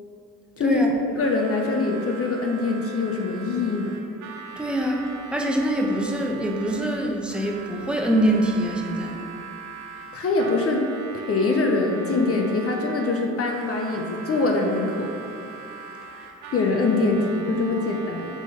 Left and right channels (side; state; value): both; normal; correlation 0.41